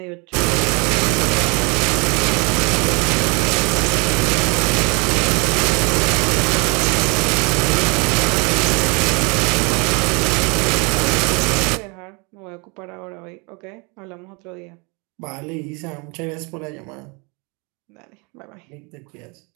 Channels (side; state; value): left; quieter; 30.5 dB